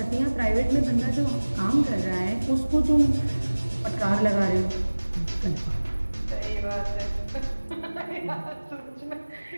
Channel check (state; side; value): inverted; both; correlation -1.00